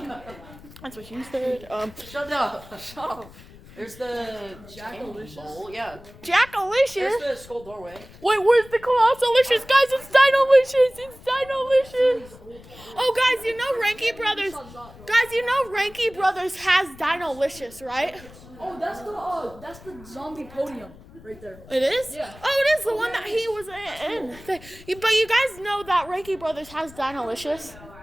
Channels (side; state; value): left; noise; rumble, 20 dB below the sound